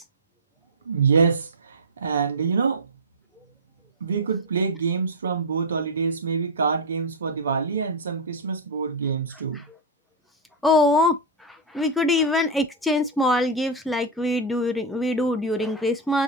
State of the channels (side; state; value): both; normal; correlation 0.02